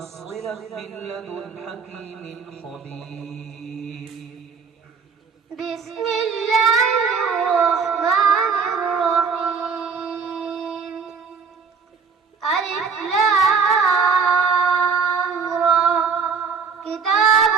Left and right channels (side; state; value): left; quieter; 5.7 dB